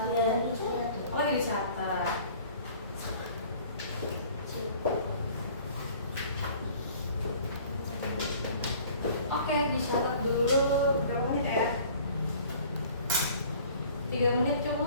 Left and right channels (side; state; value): both; inverted; correlation -0.50